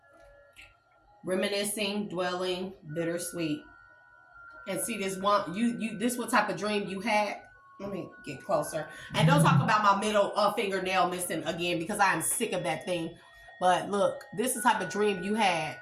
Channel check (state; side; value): identical; both; correlation 1.00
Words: Reminiscing, dwelling, bittersweet. And see this one, this what type of dream you had. Let me get closer. And don't talk about my middle fingernail missing again because I am sick of that thing. But look, this is the type of dream you had